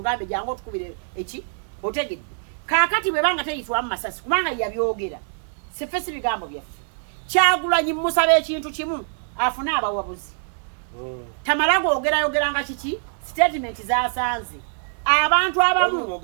jangu otukubire eki otegedde kaakati bwe banga teyitibwa mu masasi kubanga yabyogera siffe si bigambo byaffe Kyagulanyi musaba ekintu kimu afune abawabuzi tamala googeranga kiki statement zasanze abantu abamu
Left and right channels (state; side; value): silent; left; digital silence